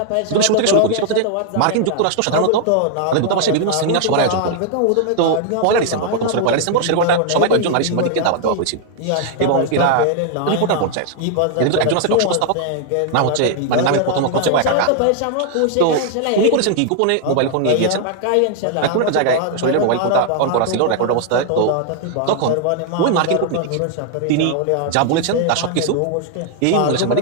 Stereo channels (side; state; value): both; different; correlation 0.00